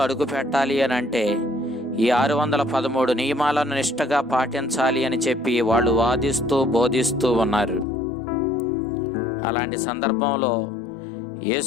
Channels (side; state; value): right; drops out; at 7.9 s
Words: అడుగు పెట్టాలి అని అంటే ఈ 613 నియమాలను నిష్టగా పాటించాలి అని చెప్పి వాళ్ళు వాదిస్తూ బోధిస్తూ ఉన్నారు. అలాంటి సందర్భంలో